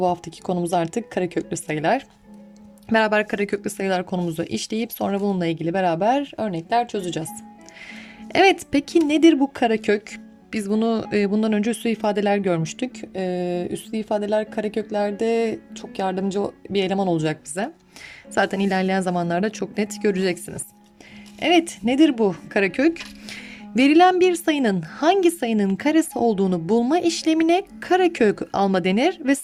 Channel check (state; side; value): identical; both; correlation 1.00